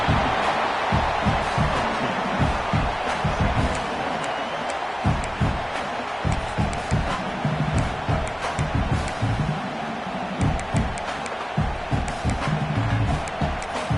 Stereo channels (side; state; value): both; identical; correlation 1.00